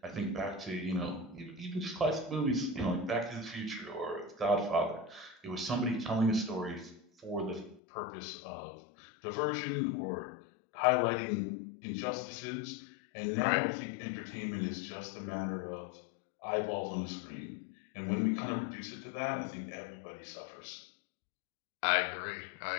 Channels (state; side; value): drops out; right; at 7.8 s